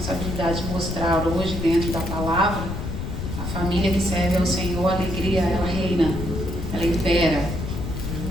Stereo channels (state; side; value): noise; left; rumble, 5 dB below the sound